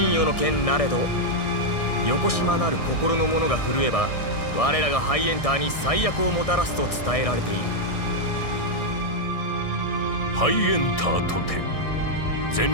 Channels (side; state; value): right; late; 1.6 ms